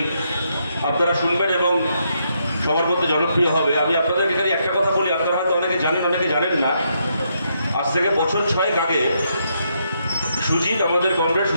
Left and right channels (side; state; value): both; inverted; correlation -0.77